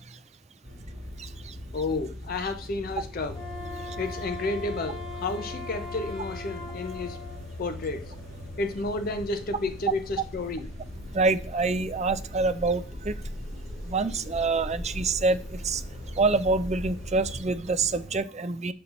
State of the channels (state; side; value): normal; both; correlation 0.34